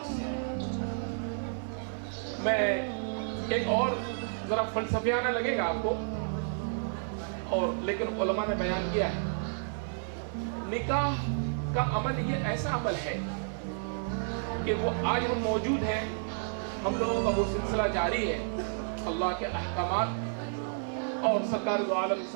से मैं एक और जरा फलसफियाना लगेगा आपको, और लेकिन उलमा ने बयान किया है। निकाह का अमल ये ऐसा अमल है कि वो आज हम मौजूद हैं, हम लोगों का वो सिलसिला जारी है। अल्लाह के अहकामात और सरकार दो आलम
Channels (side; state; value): left; silent; 55 dB below the other